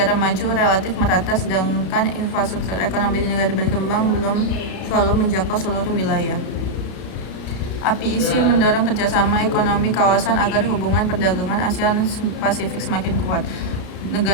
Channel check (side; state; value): right; late; 32 ms